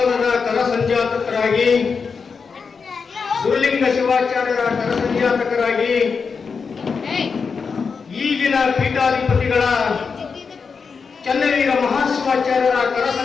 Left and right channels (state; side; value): quieter; right; 5.4 dB